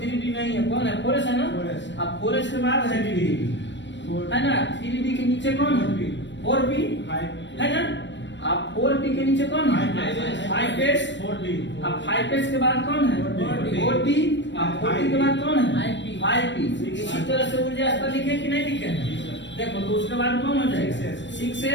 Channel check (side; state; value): right; late; 0.53 ms